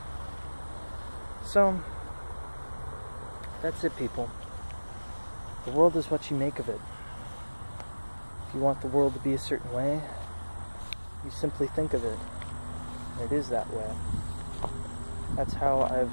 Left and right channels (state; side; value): inverted; both; correlation -1.00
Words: So, that's it, people. The world is what you make of it. If you want the world to be a certain way, you simply think of it. And it is that way. That's how I've